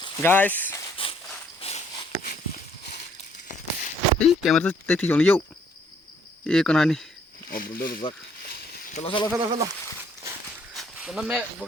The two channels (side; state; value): both; normal; correlation 0.64